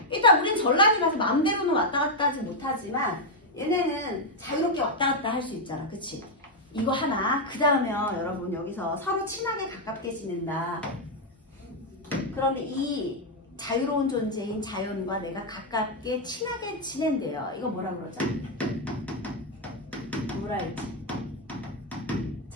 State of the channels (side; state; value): both; normal; correlation 0.00